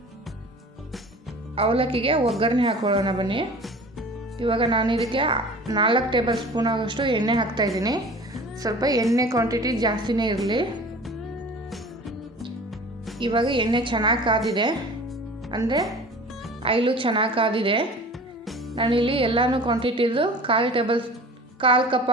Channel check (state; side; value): normal; both; correlation 0.41